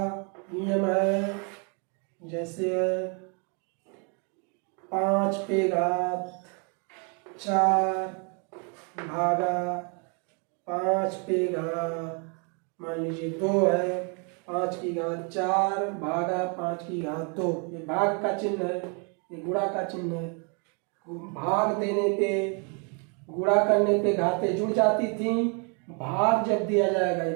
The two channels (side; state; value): left; quieter; 36.5 dB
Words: नियम है, जैसे 5 पे घात 4 भागा 5 पे घात मान लीजिए 2 है, 5 की घात 4 भागा 5 की घात 2, ये भाग का चिन्ह है, ये गुणा का चिन्ह है। भाग देने पे, गुणा करने पे घातें जुड़ जाती थी, भाग जब दिया जाएगा, ये